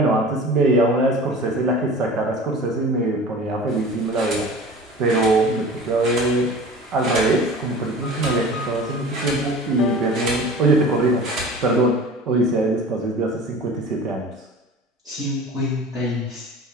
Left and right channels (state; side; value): normal; both; correlation 0.39